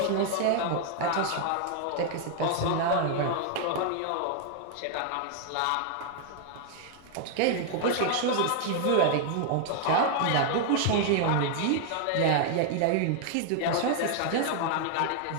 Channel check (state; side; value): different; both; correlation 0.00